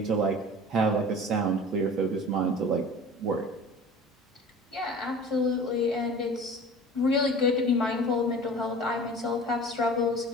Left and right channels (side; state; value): both; normal; correlation 0.41